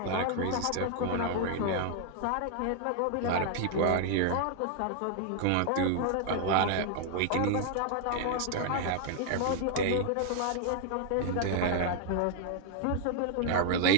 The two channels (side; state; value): both; different; correlation 0.00